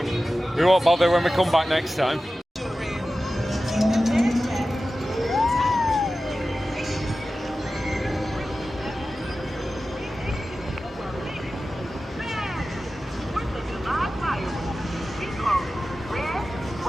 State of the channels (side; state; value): both; normal; correlation 0.95